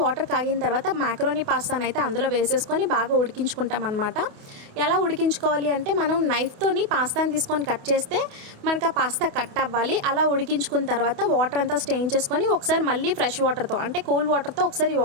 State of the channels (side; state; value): left; late; 28 ms